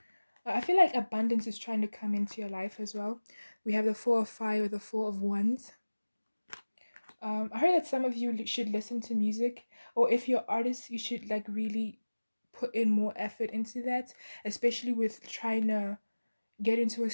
I feel like abundance is trying to come into your life as well. We have the Four of Fire or the Four of Wands. I heard that some of you should listen to music, or if you're artists, you should like really put in more effort into that, especially with trying to get into a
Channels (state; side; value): inverted; both; correlation -1.00